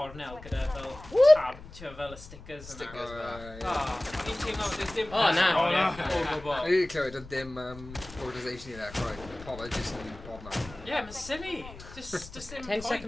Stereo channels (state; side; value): noise; left; rumble, 16 dB below the sound